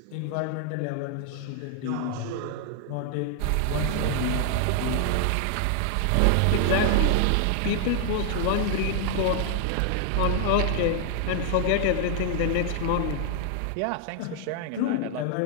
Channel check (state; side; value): different; both; correlation 0.00